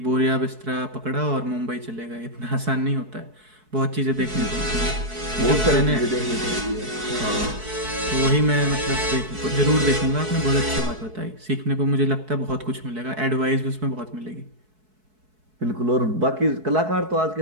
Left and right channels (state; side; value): late; left; 4.6 ms